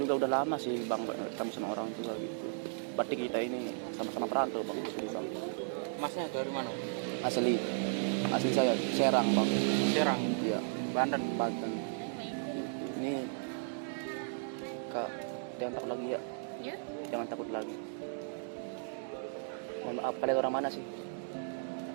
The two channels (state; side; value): silent; left; digital silence